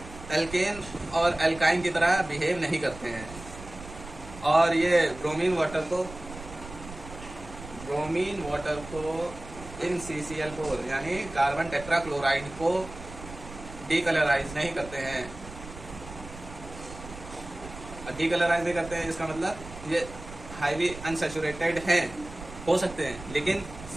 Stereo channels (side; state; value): right; noise; rumble, 14 dB below the sound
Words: एल्केन और एल्काइन की तरह बिहेव नहीं करते हैं, और ये ब्रोमीन वाटर को इन CCl4 यानी कार्बन टेट्राक्लोराइड को डीकलराइज नहीं करते हैं। डीकलराइज नहीं करते हैं इसका मतलब ये हाईली अनसैचुरेटेड हैं, हो सकते हैं, लेकिन